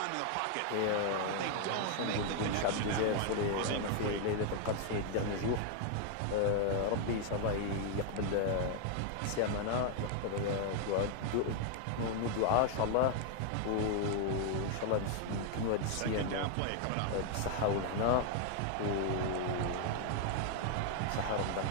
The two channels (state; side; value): different; both; correlation 0.00